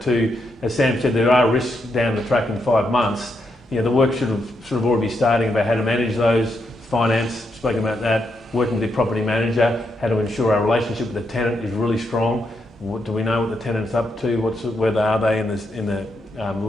To, as Sam said, there are risks down the track in 5 months. The work should have already be starting about how to manage those, finance, spoken about that, working with the property manager, how to ensure our relationship with the tenant is really strong. What do we know what the tenant's up to? Where are they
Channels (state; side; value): normal; both; correlation 0.81